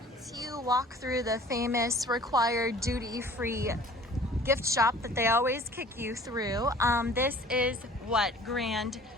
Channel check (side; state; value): both; normal; correlation 0.48